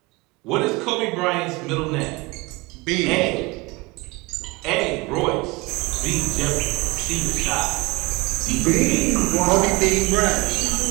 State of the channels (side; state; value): left; quieter; 24.1 dB